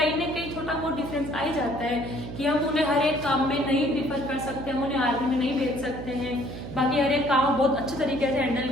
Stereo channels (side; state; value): right; noise; hum, 9 dB below the sound